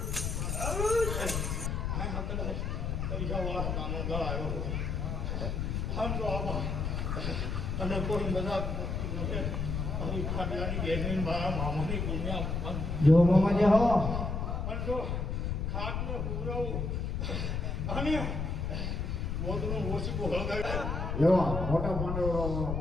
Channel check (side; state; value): left; noise; rumble, 1 dB below the sound